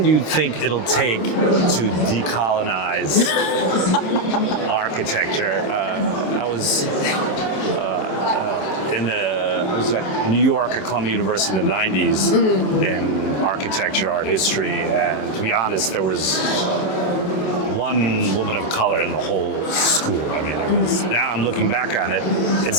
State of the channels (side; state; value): right; late; 27 ms